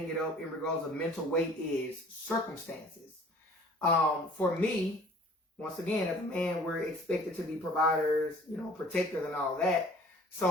it up in regards of mental weight is circumstances. For me, once again, as a man, we're expected to be providers, protectors and all that.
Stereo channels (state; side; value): normal; both; correlation 0.51